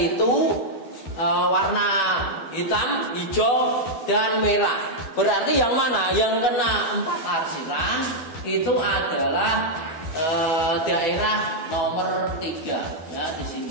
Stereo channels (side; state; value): right; late; 12 ms